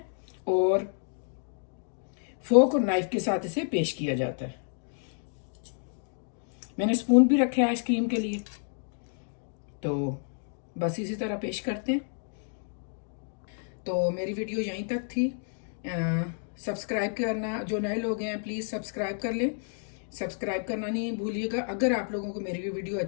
और फोक और नाइफ के साथ इसे पेश किया जाता है। मैंने स्पून भी रखे हैं आइसक्रीम के लिए। तो बस इसी तरह पेश करते हैं। तो मेरी वीडियो यहीं तक थी। सब्सक्राइब करना, जो नए लोग हैं प्लीज़ सब्सक्राइब कर लें, सब्सक्राइब करना नहीं भूलिएगा अगर आप लोगों को मेरी वीडियो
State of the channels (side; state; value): right; silent; digital silence